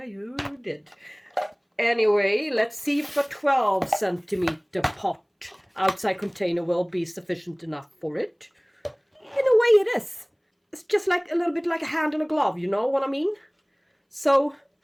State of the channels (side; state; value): both; identical; correlation 1.00